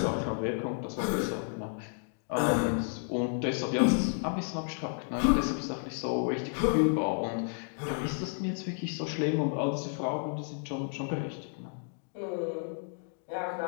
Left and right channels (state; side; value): silent; right; 57 dB below the other